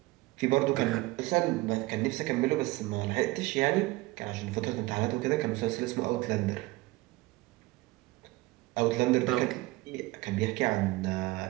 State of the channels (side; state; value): left; quieter; 20.6 dB